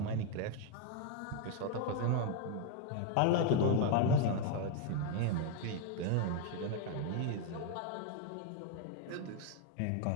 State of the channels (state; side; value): different; both; correlation 0.01